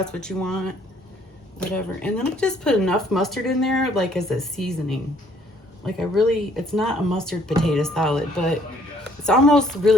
what you want, whatever. And then I just put enough mustard in there, like as a seasoning. Like it's not a mustard potato salad, but it's almost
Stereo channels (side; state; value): both; normal; correlation 0.63